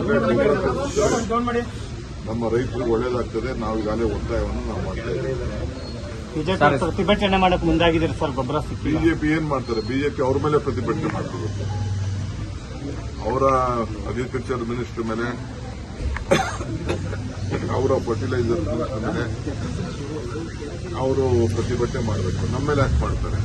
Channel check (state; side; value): identical; both; correlation 1.00